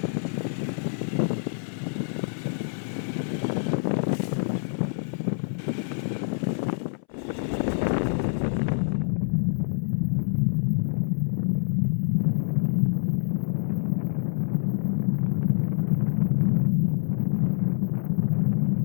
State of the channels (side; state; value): right; silent; 61 dB below the other